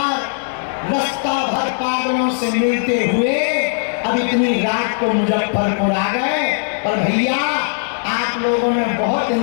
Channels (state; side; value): silent; right; digital silence